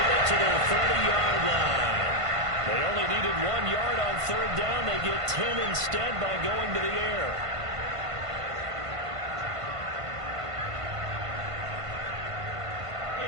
it to their 30-yard line. They only needed 1 yard on 3rd down. They get 10 instead by going to the air.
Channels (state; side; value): late; left; 1.5 ms